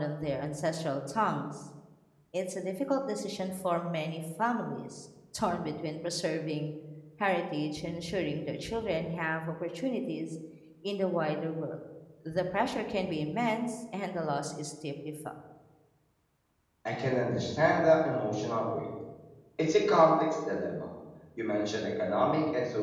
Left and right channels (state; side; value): identical; both; correlation 1.00